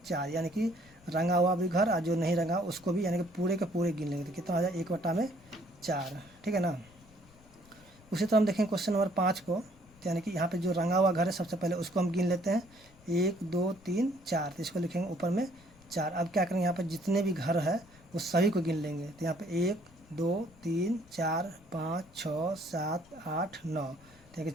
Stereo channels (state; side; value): noise; left; rumble, 26 dB below the sound